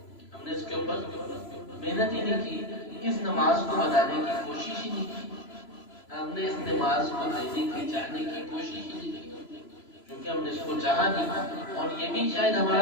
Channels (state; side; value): late; right; 3.0 ms